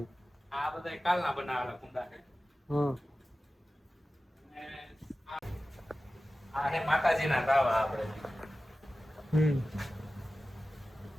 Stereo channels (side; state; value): both; normal; correlation 0.95